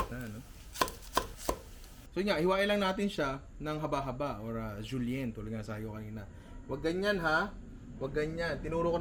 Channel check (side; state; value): both; identical; correlation 1.00